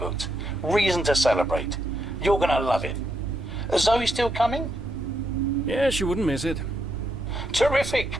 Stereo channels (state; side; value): normal; both; correlation 0.79